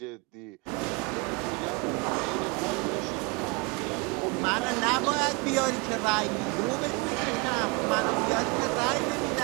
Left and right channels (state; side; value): quieter; left; 28.5 dB